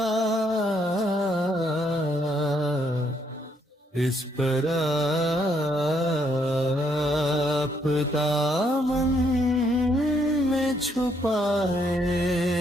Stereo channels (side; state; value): both; normal; correlation 0.72